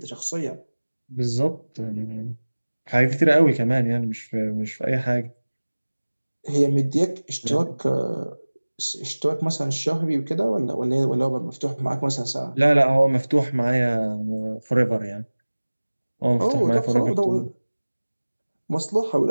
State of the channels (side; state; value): both; inverted; correlation -1.00